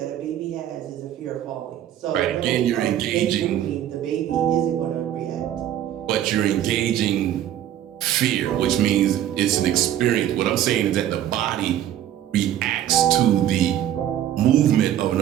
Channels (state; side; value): quieter; left; 11.5 dB